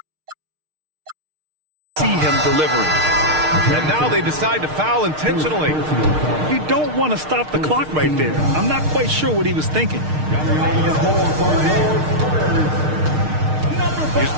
see him delivering. And now they decide to foul intentionally. You don't want to stop the clock right there. I'm not quite sure what he was thinking. Here's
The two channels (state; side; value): late; left; 6.5 ms